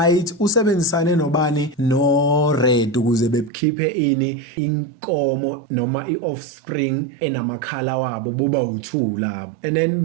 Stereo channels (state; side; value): drops out; left; at 3.5 s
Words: usebenzisane nobani no-red ukuze bekhiphe ini inkomo noma i-offspring enamakhala wabo buba u2 labo and then